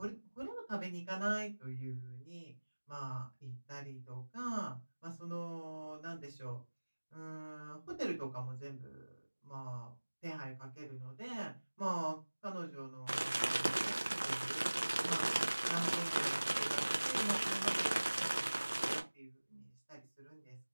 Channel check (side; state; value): both; inverted; correlation -1.00